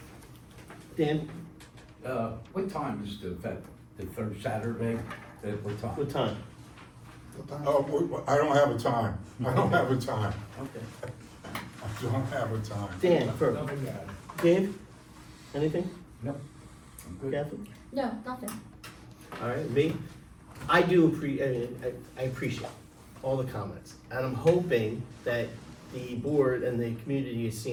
Dan, What time is the event? The third Saturday? At what time? what time? What time? Oh, I don't have a time. I don't have a time. Okay. I don't have a time. Dan, for, Nothing to add. Dave, anything? No. I'm good. Kathy? No, nothing. All right, me, I appreciate all the comments, and I'm hoping that the board and the community is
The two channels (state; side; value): identical; both; correlation 1.00